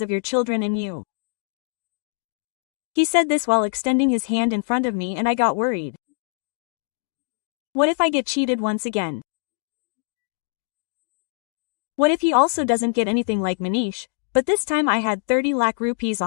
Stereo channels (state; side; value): silent; right; digital silence